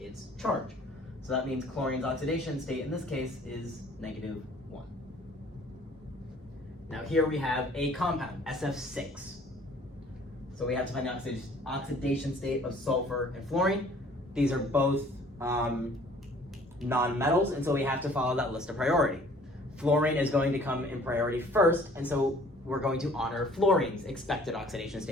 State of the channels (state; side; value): normal; both; correlation 0.54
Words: charge. So that means chlorine's oxidation state in this case is -1. Now here we have a compound, SF6. So we have to find the oxidation state of sulfur and fluorine. These are both non-metals, and so we have to follow that list of priority. Fluorine is going to come in priority first, and so we're going to honor fluorine's expected oxidation